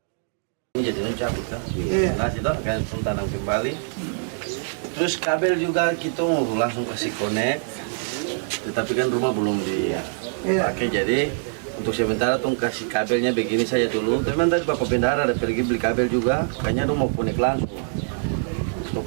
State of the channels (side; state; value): left; silent; digital silence